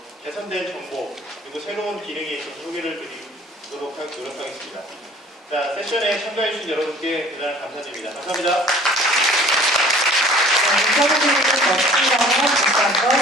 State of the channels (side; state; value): both; normal; correlation 0.50